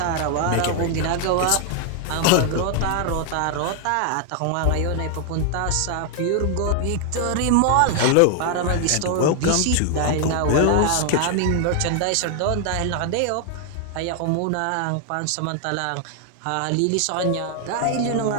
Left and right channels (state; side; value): different; both; correlation 0.00